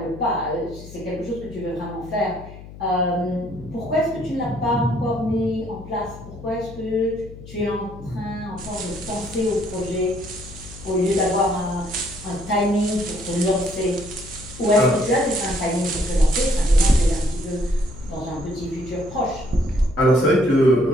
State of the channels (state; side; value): noise; left; hum, 16 dB below the sound